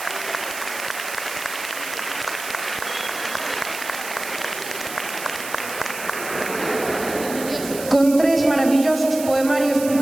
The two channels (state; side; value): noise; right; hiss, 10 dB below the sound